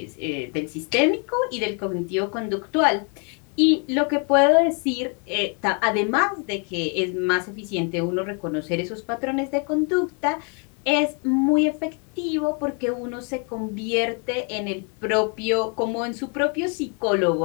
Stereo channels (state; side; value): quieter; right; 37.5 dB